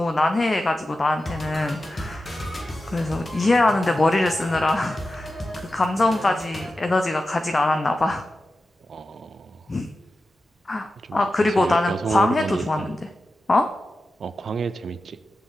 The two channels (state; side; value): normal; both; correlation 0.92